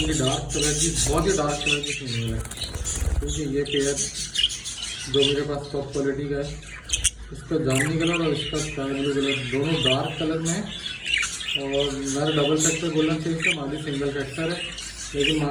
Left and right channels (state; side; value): identical; both; correlation 1.00